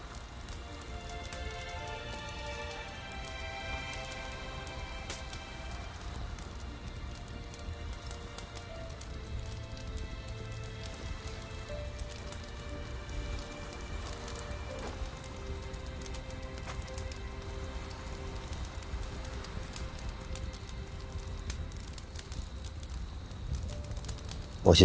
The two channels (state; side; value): identical; both; correlation 1.00